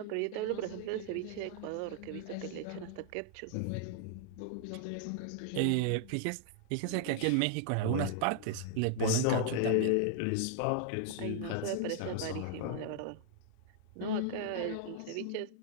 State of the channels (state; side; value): different; both; correlation -0.01